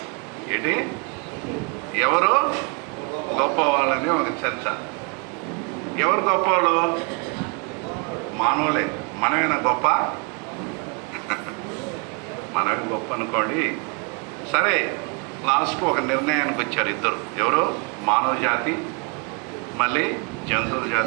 ఏంటి? ఎవరు గొప్పవాళ్ళని ఒక చర్చ. ఎవరు గొప్పవాళ్ళు? మానవులే. మనమేనా గొప్ప? మనమే గొప్ప అనుకోండి. సరే, లాస్ట్కు ఒక నిర్ణయానికి వచ్చారు ఇద్దరు. ఎవరు? మానవ జాతి, మళ్ళీ జంతువుల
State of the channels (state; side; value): quieter; left; 33.5 dB